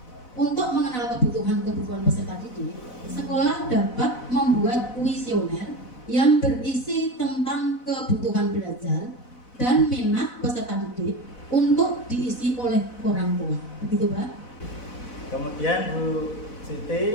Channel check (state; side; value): late; right; 4.0 ms